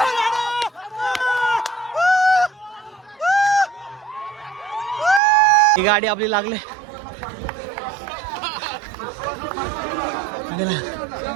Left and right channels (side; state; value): left; drops out; at 5.2 s